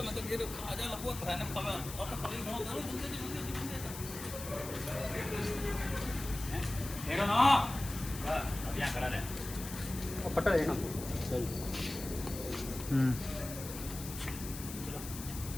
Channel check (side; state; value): left; noise; hiss, 10 dB below the sound